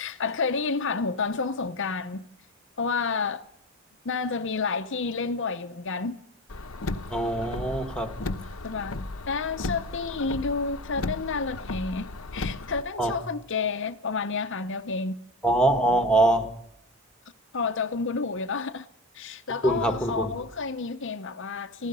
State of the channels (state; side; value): normal; both; correlation 0.25